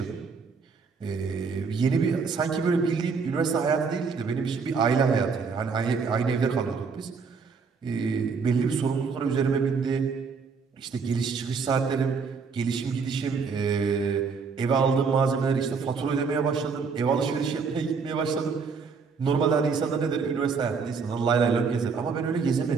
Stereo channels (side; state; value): left; quieter; 5.3 dB